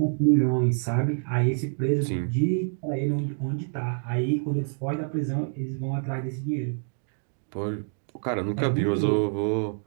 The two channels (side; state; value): left; silent; digital silence